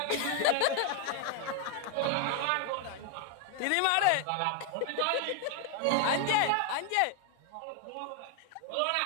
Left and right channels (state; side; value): different; both; correlation 0.01